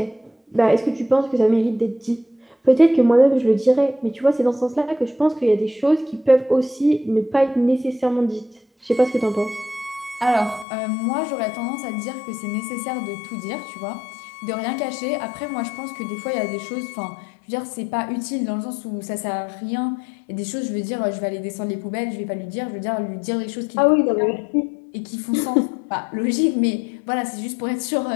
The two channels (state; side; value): drops out; right; at 10.7 s